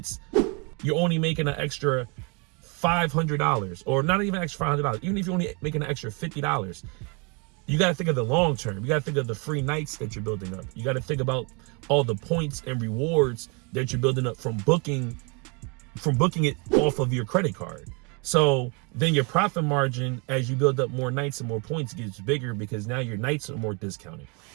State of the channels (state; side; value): quieter; left; 32.4 dB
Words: you're only making an extra $500, or not even extra $500, even if you're only making an extra $50, you got to think of the long term. You got to think of the free nights that you're building up. You got to think about all the points and rewards that you're building up from booking it off of your credit card. So then your profit margin, as you build up more nights and more points, gets bigger because now your nights are more discounted.